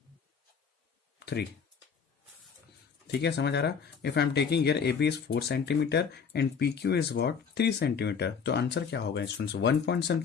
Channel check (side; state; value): right; quieter; 6.3 dB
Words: 3। ठीक है, समझ आ रहा। If I am taking here AB is 4 centimetre and PQ is what 3 centimetre, तो आंसर क्या होगा students, 1 point